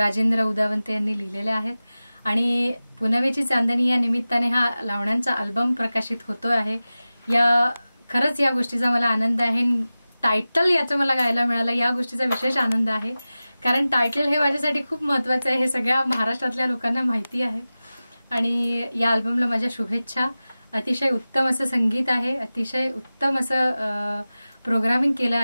उदावंते यांनी लिहिलेल्या आहेत आणि पुनवेची चांदणी या निमित्ताने हा लावण्यांचा अल्बम प्रकाशित होतो आहे। खरंच या गोष्टीचा मला आनंद आहे। टायटल याचं मला गायला मिळालं या गोष्टीचा विशेष आनंद आहे, कारण टायटल हे माझ्यासाठी खूप महत्त्वाचं आहे, हे सगळ्या महाराष्ट्रातल्या लोकांना माहिती आहे। आणि या अल्बमला माझ्या शुभेच्छा। अतिशय उत्तम असं संगीत आहे, अतिशय उत्तम असं प्रोग्रामिंग केलं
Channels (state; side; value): inverted; both; correlation -0.96